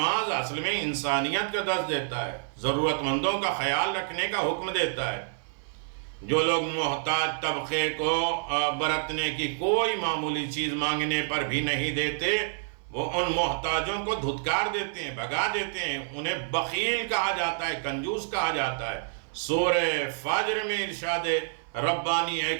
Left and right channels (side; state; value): left; silent; 56 dB below the other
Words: اصل میں انسانیت کا درس دیتا ہے، ضرورت مندوں کا خیال رکھنے کا حکم دیتا ہے۔ جو لوگ محتاج طبقے کو برتنے کی کوئی معمولی چیز مانگنے پر بھی نہیں دیتے، وہ ان محتاجوں کو دھتکار دیتے ہیں، بھگا دیتے ہیں، انہیں بخیل کہا جاتا ہے، کنجوس کہا جاتا ہے۔ سورہ فجر میں ارشاد ربانی ہے